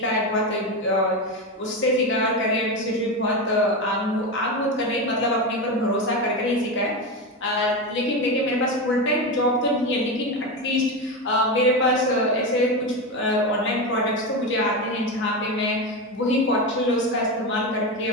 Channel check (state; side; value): normal; both; correlation 0.17